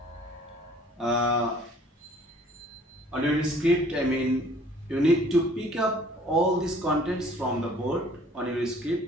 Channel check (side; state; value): both; normal; correlation 0.55